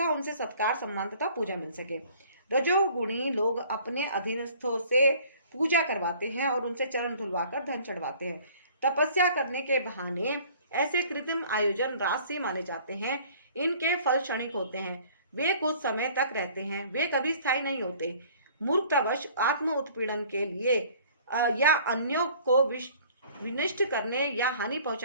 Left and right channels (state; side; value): inverted; both; correlation -0.52